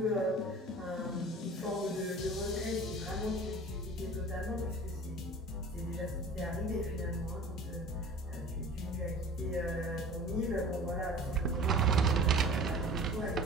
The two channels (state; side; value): normal; both; correlation 0.42